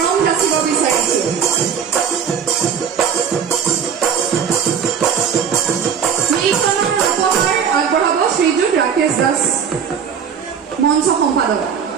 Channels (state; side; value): quieter; left; 7.4 dB